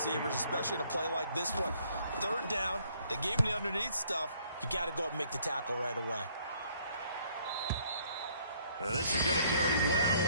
especially in a play like this one. Third down, they gave him the underneath stuff. You got to go up and make the tackle right away. And this is going to carry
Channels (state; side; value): inverted; both; correlation -0.63